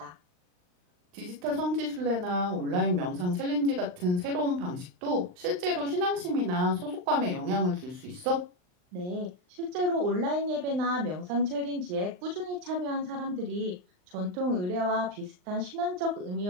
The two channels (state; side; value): late; left; 39 ms